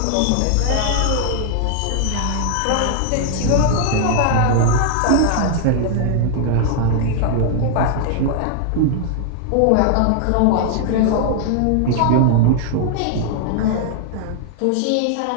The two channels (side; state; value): both; different; correlation 0.00